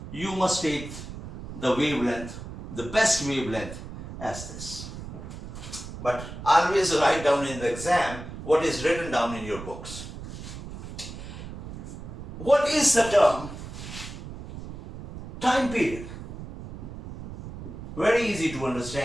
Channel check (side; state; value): right; noise; rumble, 11 dB below the sound